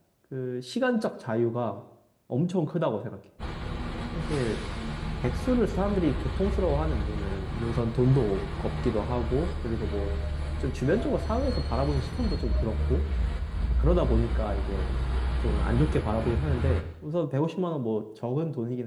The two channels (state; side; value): identical; both; correlation 1.00